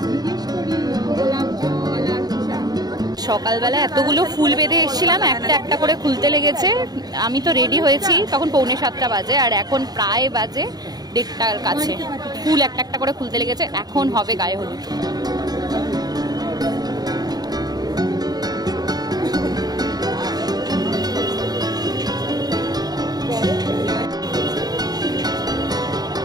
সকালবেলা এতগুলো ফুল বেঁধে এসেছিলাম, একটা একটা করে খুলতে লেগেছে। আমি তো রেডি হয়েছি তখন 6:45 বাজে, আর এখন প্রায় বাজে 1:30টার কাছে। ফুল একটা একটা করে খুলতে লেগেছে, এখন হবে গায়ে হলুদ।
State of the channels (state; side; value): late; left; 0.19 ms